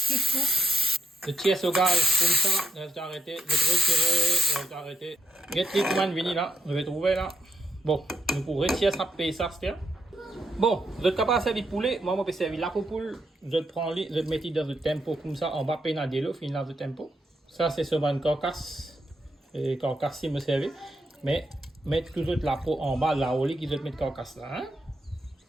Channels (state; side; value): normal; both; correlation 0.80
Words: coups. Le tiers au gaz, comme ça, je vais arrêter, je vais retirer, je vais arrêter. Get les commandes venir là, je vais trouver là. Bon, nous pour retirer ça, payer ça, c'est bon, vous êtes capable de servir poulet, moi je peux servir la poule, je prends les, je mets dans le tempo comme ça, on va payer dans l'eau, finir dans le tempo. Ça c'est sur une carcasse, et carcasse si me servez, mais mettre toujours la peau en bas là, au lit qu'ils mettent carcasse là. Hein?